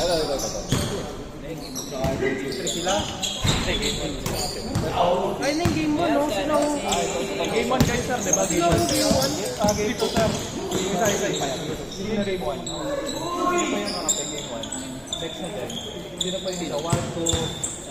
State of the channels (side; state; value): both; identical; correlation 1.00